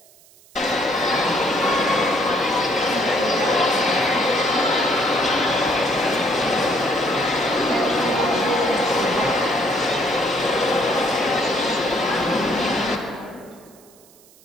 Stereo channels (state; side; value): noise; right; hiss, 27 dB below the sound